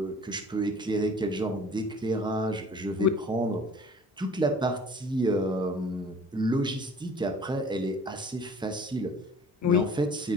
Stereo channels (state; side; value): normal; both; correlation 0.48